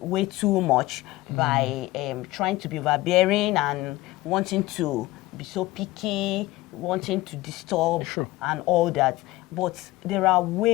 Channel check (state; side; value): quieter; right; 18.4 dB